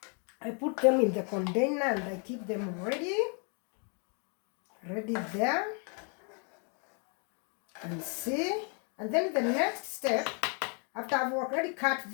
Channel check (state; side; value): quieter; right; 39.4 dB